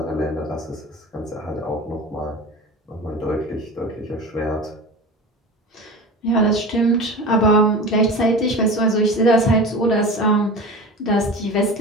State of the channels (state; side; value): normal; both; correlation 0.32